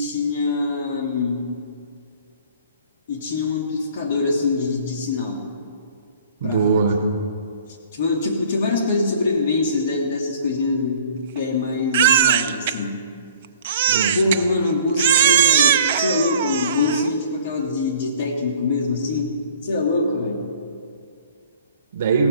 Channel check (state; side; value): inverted; both; correlation -0.51